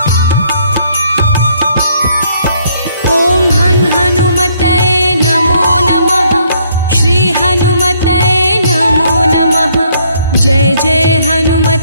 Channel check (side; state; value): both; inverted; correlation -0.67